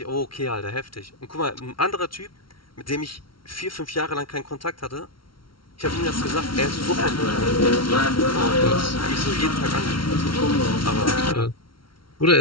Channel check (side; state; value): right; late; 0.74 ms